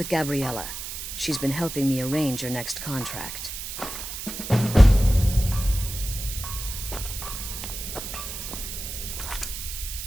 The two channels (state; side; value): noise; right; hiss, 7 dB below the sound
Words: Gabriella. She's been helping me arrange your next contract.